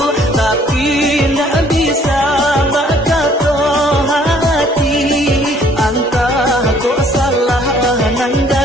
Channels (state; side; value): normal; both; correlation 0.60